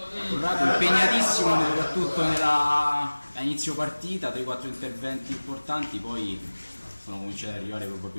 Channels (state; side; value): inverted; both; correlation -1.00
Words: Corrado impegnatissimo soprattutto a inizio partita, 3-4 interventi importanti, poi sono cominciati ad arrivare